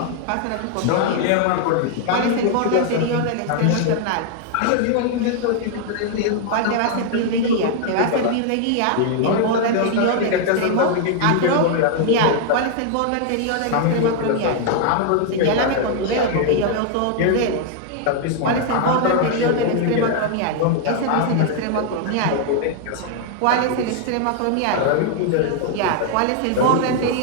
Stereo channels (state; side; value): different; both; correlation 0.00